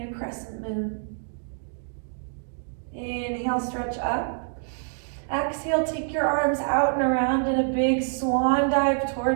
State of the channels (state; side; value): silent; left; digital silence